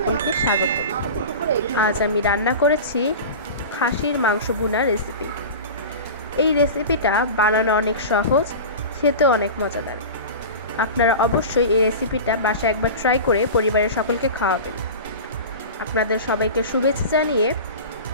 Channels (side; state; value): both; inverted; correlation -0.31